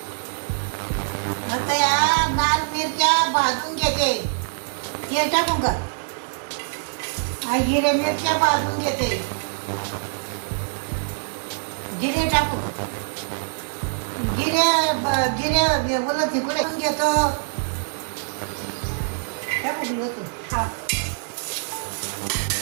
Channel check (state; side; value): silent; left; digital silence